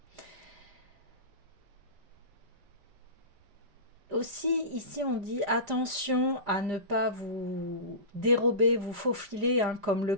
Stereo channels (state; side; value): late; left; 5.0 ms